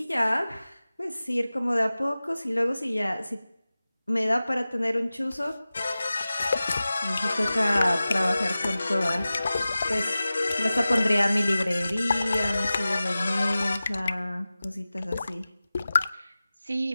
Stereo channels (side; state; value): both; inverted; correlation -0.96